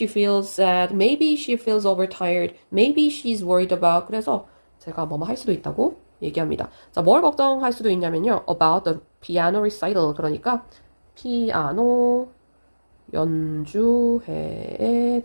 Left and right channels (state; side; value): inverted; both; correlation -1.00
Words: feels sad, maybe she feels overtired, maybe she's worried about. 그래서 제가 뭐뭐 할 수도 있다고 얘기합니다. 자, 뭘 걱정할 수도 있냐면요. about the piano recital. 그러니까 피아노 연주회에